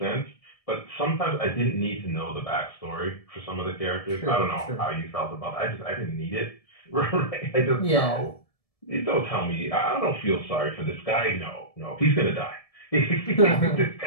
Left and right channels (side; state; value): right; late; 1.7 ms